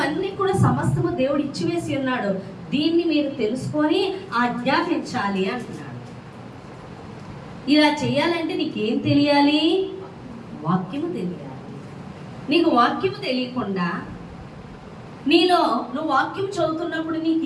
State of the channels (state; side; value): identical; both; correlation 1.00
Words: కూడా సమస్తము దేవుడు ఇచ్చివేసి ఉన్నాడు. దీన్ని మీరు తెలుసుకొని ఆజ్ఞాపించాలి అంటున్నాడు. ఇలా చేయాలంటే నీకేం తెలియాలి? వాక్యము తెలియాలి. నీకు వాక్యము తెలియకుండా నీలో నువ్వు వాక్యం చదువుతున్నప్పుడు నీకు